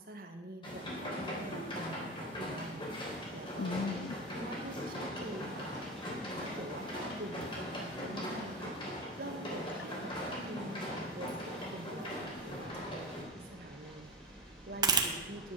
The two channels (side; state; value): both; normal; correlation 0.24